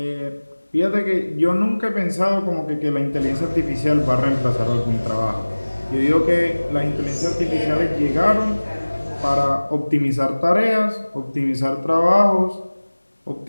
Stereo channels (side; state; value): both; inverted; correlation -1.00